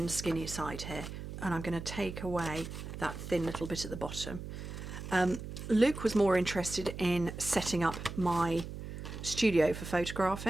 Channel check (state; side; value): noise; right; hum, 9 dB below the sound